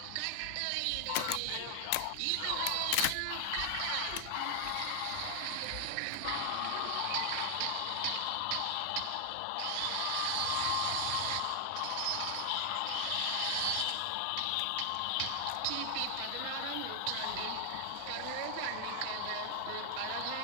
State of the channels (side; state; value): both; different; correlation 0.00